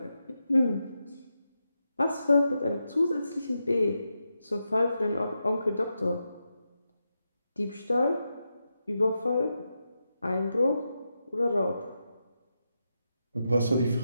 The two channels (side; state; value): both; inverted; correlation -0.87